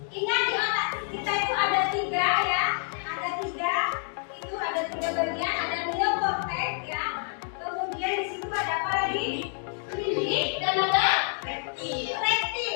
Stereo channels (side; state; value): right; silent; 56 dB below the other